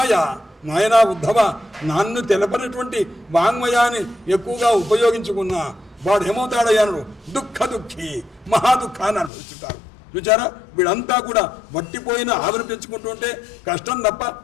నాయనా ఉద్ధవ నన్ను తెలపనటువంటి వాంగ్మయాన్ని ఎక్కువగా ఉపయోగించుకున్నా వాడు ఏమవుతాడయ్యాను దుఃఖీ మహాదుఃఖాన్ని అనుభవిస్తుంటారు. చూచారా వీళ్ళంతా కూడా వట్టిపోయిన ఆవిరి పెంచుకుంటూ ఉంటే కష్టం తప్ప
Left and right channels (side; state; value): right; drops out; at 9.3 s